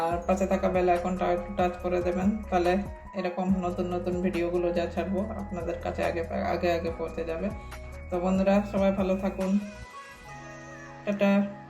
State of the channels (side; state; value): both; identical; correlation 1.00